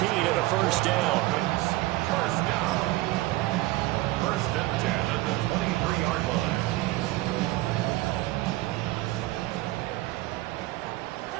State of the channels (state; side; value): quieter; left; 18.7 dB